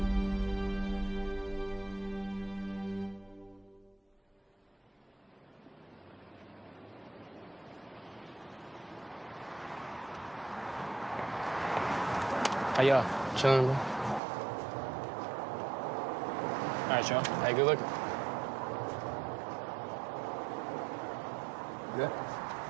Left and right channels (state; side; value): drops out; left; at 14.2 s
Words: How y'all? Chilling, bro. All right, y'all. Hey, good looking. Good?